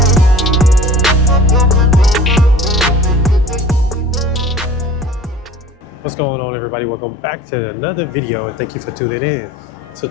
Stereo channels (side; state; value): both; normal; correlation 0.44